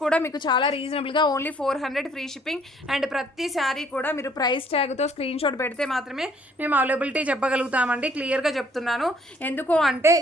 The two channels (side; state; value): both; normal; correlation 0.62